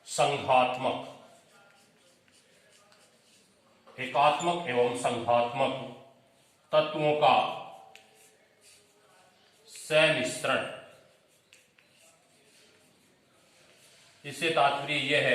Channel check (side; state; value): both; identical; correlation 1.00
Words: संघात्मक, एकात्मक एवं संघात्मक तत्वों का सम्मिश्रण। इससे तात्पर्य यह